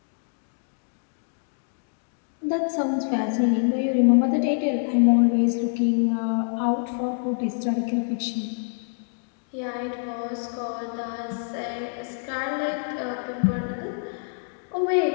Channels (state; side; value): silent; right; digital silence